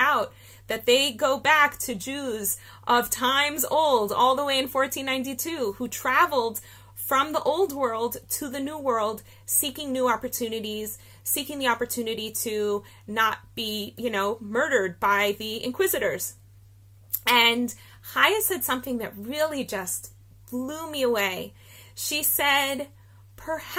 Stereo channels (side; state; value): both; identical; correlation 1.00